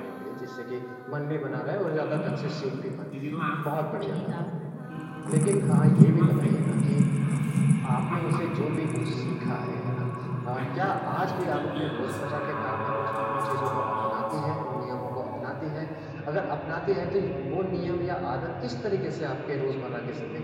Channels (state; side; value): identical; both; correlation 1.00